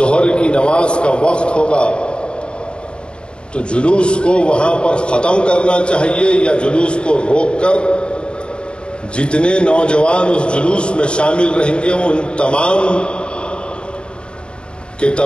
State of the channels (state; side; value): late; right; 0.053 ms